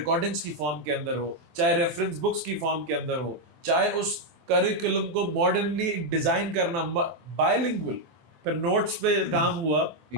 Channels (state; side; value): late; left; 24 ms